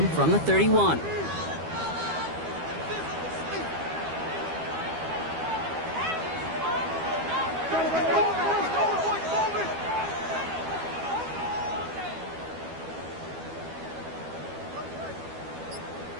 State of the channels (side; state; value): left; late; 12 ms